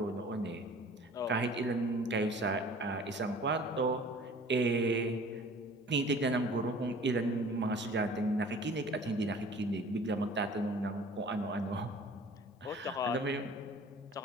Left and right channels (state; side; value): normal; both; correlation 0.48